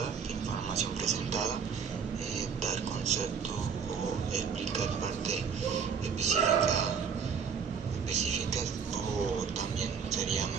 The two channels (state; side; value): quieter; left; 6.4 dB